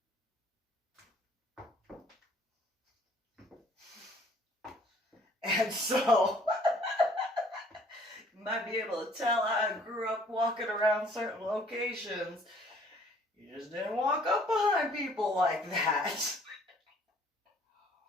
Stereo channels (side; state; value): both; normal; correlation 0.58